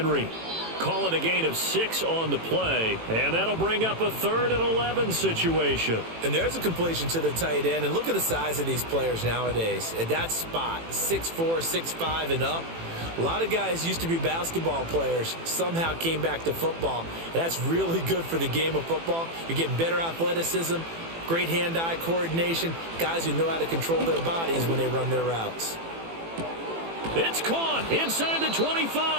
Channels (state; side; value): late; left; 18 ms